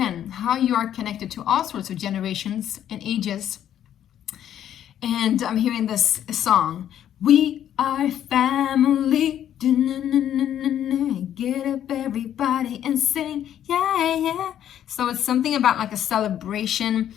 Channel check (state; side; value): quieter; right; 10.6 dB